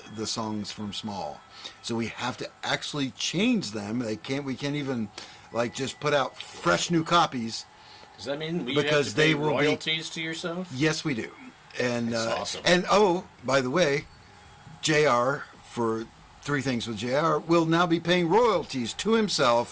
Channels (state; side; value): identical; both; correlation 1.00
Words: the songs from Small. So we have to actually change them. We can't even just put out fresh new copies. Does that mean we because have to pay they will royalties to yourself? Yes, we do. And That's awesome. And by the way, JR for Three Things with JR will now be paying royalties to